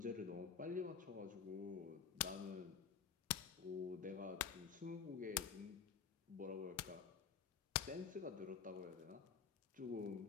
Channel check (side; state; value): right; quieter; 7.0 dB